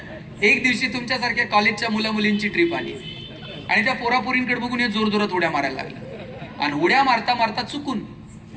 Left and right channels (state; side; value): identical; both; correlation 1.00